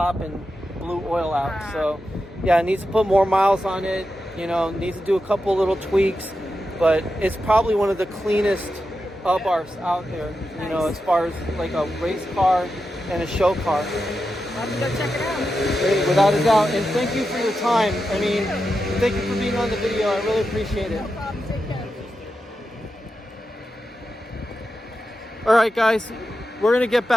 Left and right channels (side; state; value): both; normal; correlation 0.89